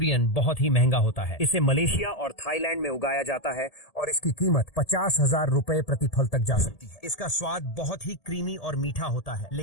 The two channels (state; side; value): late; right; 1.7 ms